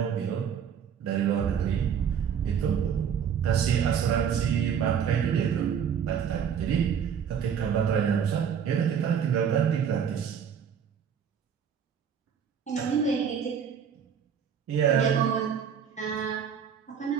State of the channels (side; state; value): left; quieter; 7.8 dB